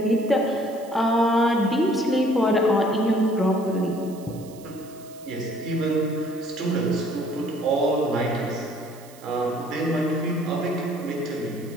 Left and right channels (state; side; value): noise; right; hiss, 23 dB below the sound